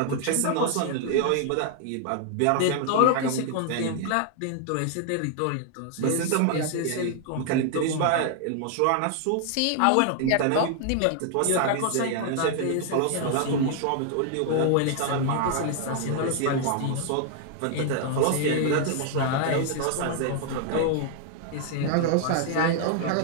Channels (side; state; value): both; different; correlation 0.00